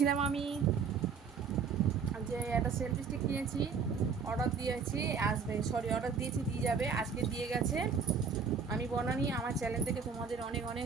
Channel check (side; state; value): left; quieter; 5.8 dB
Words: আমি যে একটা সেলফি স্টিক কিনেছি, অর্ডার দিয়েছি, আসবে, সরি অর্ডার দিয়েছি, দিয়ে যাবে, আজকে দিয়ে গেছে। আমি বনানি, আমার চ্যানেল থেকে তোমাদের অনেক অনেক